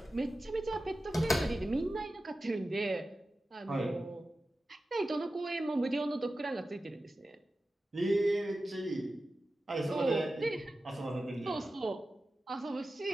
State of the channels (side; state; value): both; normal; correlation 0.94